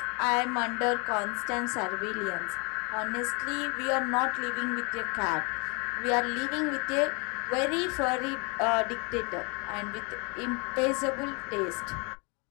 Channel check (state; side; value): quieter; right; 32.0 dB